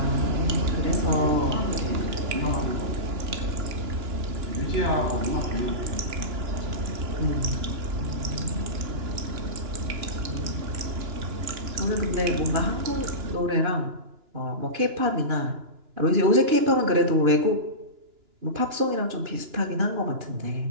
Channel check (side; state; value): left; late; 2.9 ms